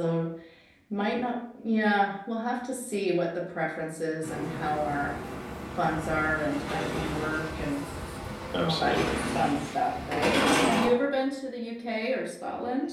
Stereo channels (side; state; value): both; identical; correlation 1.00